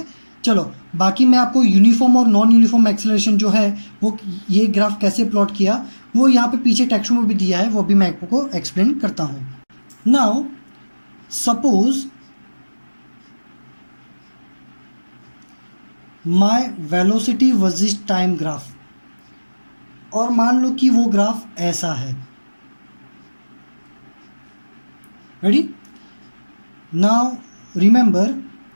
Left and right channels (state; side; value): inverted; both; correlation -1.00